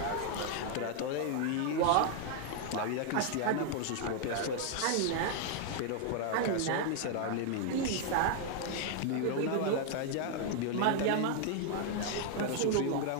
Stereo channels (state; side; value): different; both; correlation 0.00